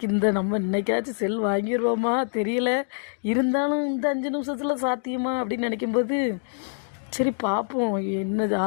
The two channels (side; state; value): right; silent; digital silence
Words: நம்ம இன்னைக்காச்சும் செல் வாங்கிடுவோமா தெரியல, இருந்தாலும் இந்த 5 நிமிஷத்தில் சாத்தியமா அப்படின்னு நினைக்கும்போது சரி பார்ப்போம் என்ன